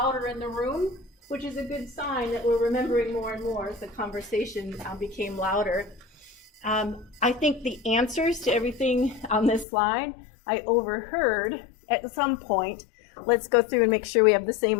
in the room, which is a good sign that we're remembering more and more as the conversation became louder. I think the answers to everything on this slide I overheard at some point. Let's go through and make sure we have the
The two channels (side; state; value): right; drops out; at 9.7 s